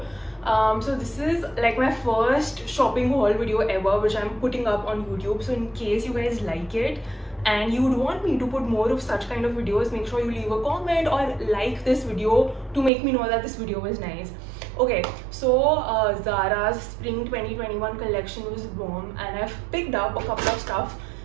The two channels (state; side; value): drops out; left; at 12.9 s